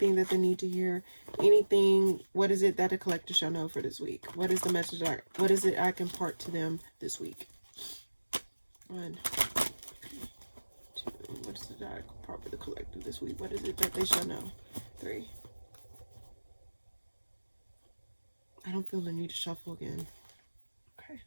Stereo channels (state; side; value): inverted; both; correlation -1.00